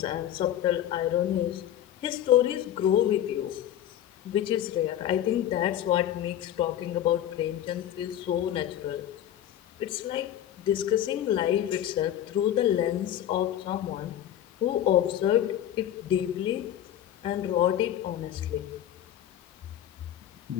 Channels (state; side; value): quieter; right; 11.3 dB